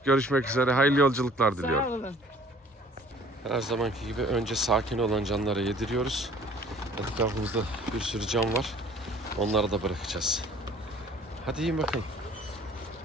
görüşmek üzere. Hayırlı yolculuklar diliyorum. Sağ olun. Her zamanki gibi önce sakin olan canlara yediriyoruz. Etrafımızda bir sürü can var. Onları da bırakacağız. Hadi yiyin bakalım.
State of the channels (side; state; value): both; normal; correlation 0.53